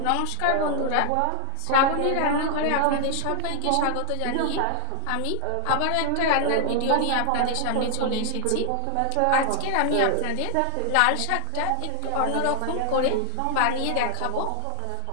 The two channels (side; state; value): both; different; correlation 0.00